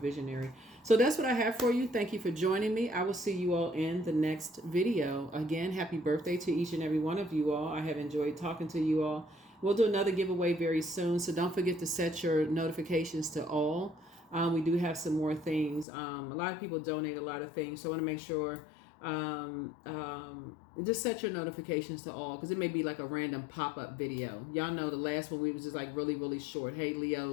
So that's what I have for you. Thank you for joining me. I will see you all in the next video. Again, happy birthday to each and every one of you all. I have enjoyed talking to you all. We'll do another giveaway very soon, so don't forget to set your notifications to all. We do have some more things. A lot of people donate a lot of things, so I want to make sure just set your notifications to all, because it may be like a random pop-up video. Y'all know the last one we was just like really, really short. Hey,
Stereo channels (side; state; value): right; drops out; at 15.9 s